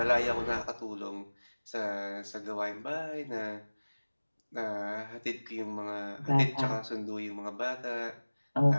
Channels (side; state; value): both; inverted; correlation -1.00